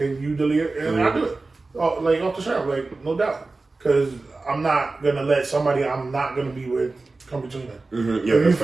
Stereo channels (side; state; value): left; quieter; 3.5 dB